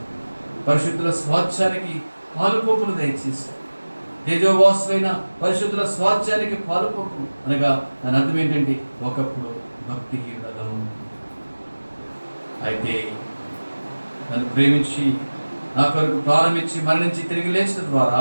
పరిశుద్ధుల స్వాస్థ్యానికి పాలుపోపులు దయచేశారు. తేజోవాసులైన పరిశుద్ధుల స్వాస్థ్యానికి పాలుపోపు అనగా దాని అర్థం ఏంటంటే ఒకప్పుడు భక్తిహీనులను, అయితే నన్ను ప్రేమించి నా కొరకు ప్రారంభించి మరణించి తిరిగి లేచిన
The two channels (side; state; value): both; inverted; correlation -1.00